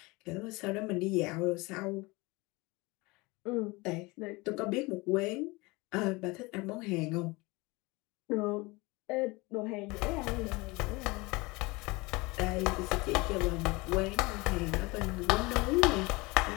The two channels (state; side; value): quieter; right; 24.2 dB